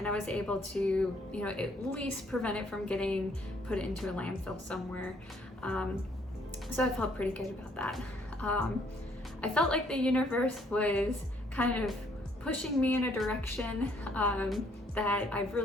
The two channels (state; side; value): normal; both; correlation 0.65